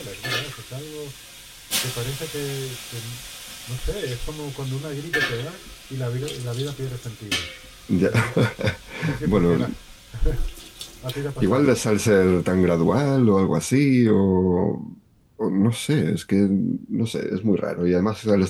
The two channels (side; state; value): both; identical; correlation 1.00